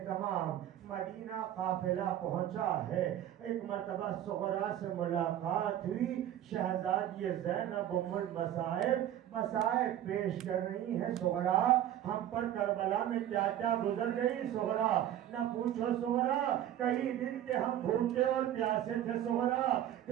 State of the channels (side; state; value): left; quieter; 11.7 dB